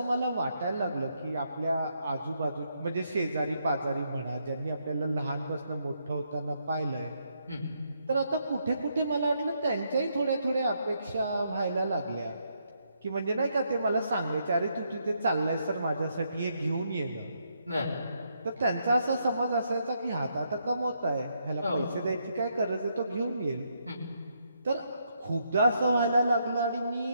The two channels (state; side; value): inverted; both; correlation -0.77